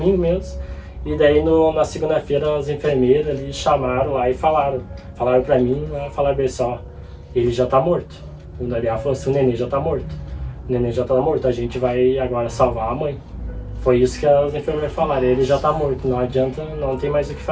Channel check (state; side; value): identical; both; correlation 1.00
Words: mesmo, e daí na segunda-feira as enfermeiras ali chamaram lá e falaram pra mim, falaram bem só, ele já tá morto. O Daniel falou assim, o neném já tá morto, a gente vai agora salvar a mãe. Foi isso que as enfermeiras falaram, ele já tá morto, não adianta, não tem mais o que